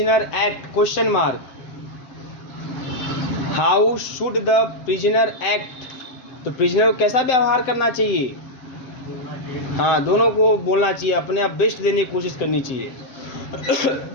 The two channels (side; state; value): right; late; 7.8 ms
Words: act, question mark, how should the prisoner act, तो प्रिजनर को कैसा व्यवहार करना चाहिए, हाँ, दोनों को बोलना चाहिए, अपने आप बेस्ट देने की कोशिश करनी चाहिए।